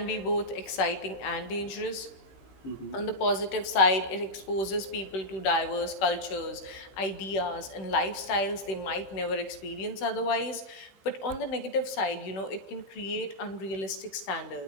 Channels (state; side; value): late; right; 16 ms